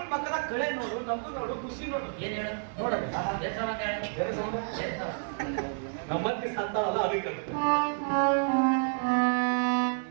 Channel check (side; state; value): left; silent; 58 dB below the other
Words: ಮಕ್ಕಳ ಕಳೆ ನೋಡು, ನಗು ನೋಡು, ಖುಷಿ ನೋಡು. ಏನ್ ಹೇಳು ನೋಡಲಿ ನಮ್ಮತ್ತಿ ಸತ್ತಾಳಲ್ಲ ಅದಕ್ಕೆ